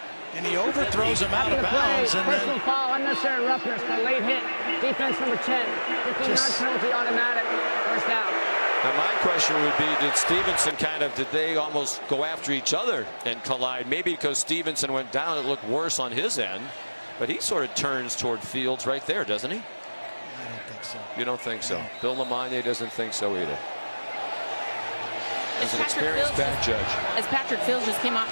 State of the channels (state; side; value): inverted; both; correlation -1.00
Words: And he overthrows him out of bounds. And personal foul, unnecessary roughness, the late hit. Defense number 10. 15-yard penalty, automatic. First down. Now my question would be, did Stevenson did they almost go after each other and collide? Maybe because Stevenson went down, it looked worse on his end. But he sort of turns toward Fields right there, doesn't he? I don't think so. You don't think so? No. Bill Lamagna doesn't think so either. As an Patrick experienced back judge. As Patrick Fields just came off